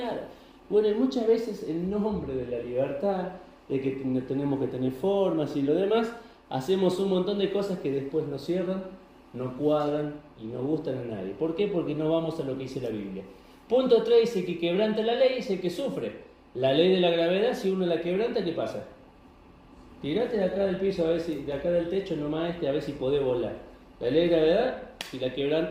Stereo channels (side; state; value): both; identical; correlation 1.00